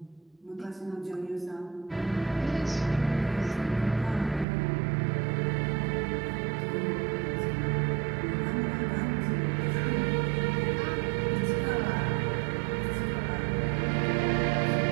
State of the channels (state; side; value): drops out; left; at 4.5 s